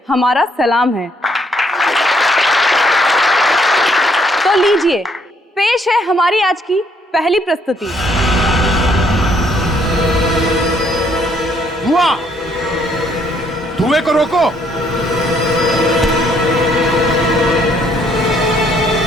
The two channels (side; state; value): both; normal; correlation 0.67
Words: हमारा सलाम है। तो लीजिए, पेश है हमारी आज की पहली प्रस्तुति। धुआं, धुएं को रोको।